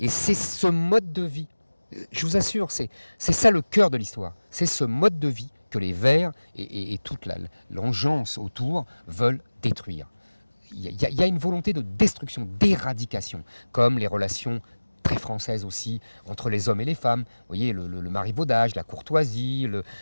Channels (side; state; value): both; inverted; correlation -1.00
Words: Et c'est ce mode de vie, je vous assure, c'est ça le cœur de l'histoire, c'est ce mode de vie que les Verts et toute l'engeance autour veulent détruire. Il y a une volonté de destruction, d'éradication, comme les relations très françaises aussi entre les hommes et les femmes. Vous voyez, le marivaudage, la courtoisie,